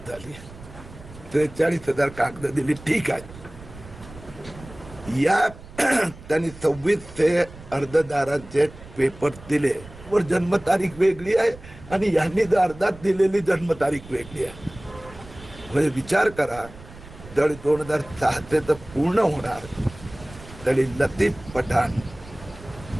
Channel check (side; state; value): right; noise; rumble, 18 dB below the sound